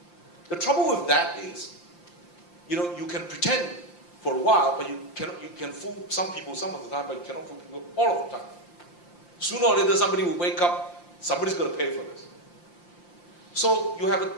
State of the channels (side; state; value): right; late; 5.8 ms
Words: The trouble with that is, you can pretend for a while, but you can fool some people some of the time, but you cannot fool people all of the time. Sooner or later, somebody will wake up, somebody's going to pay for this. So you have